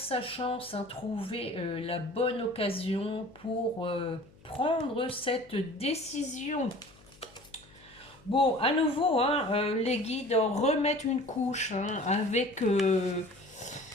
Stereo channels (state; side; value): noise; left; hum, 26 dB below the sound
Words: chance, hein, trouver la bonne occasion pour prendre cette décision. Bon, à nouveau, hein, les guides remettent une couche hein, avec